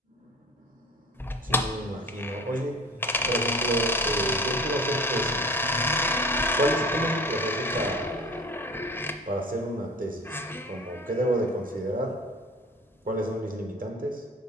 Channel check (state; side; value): normal; both; correlation 0.40